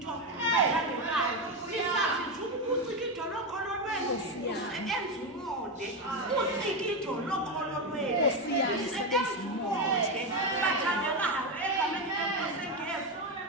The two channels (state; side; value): normal; both; correlation 0.11